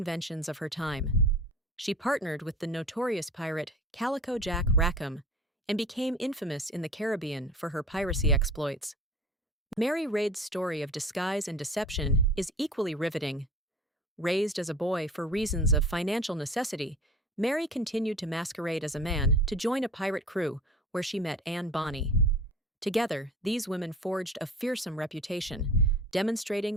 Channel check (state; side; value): normal; both; correlation 0.40